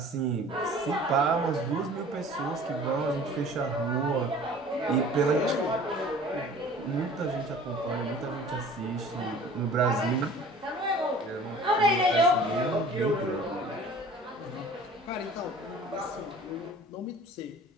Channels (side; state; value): both; normal; correlation 0.46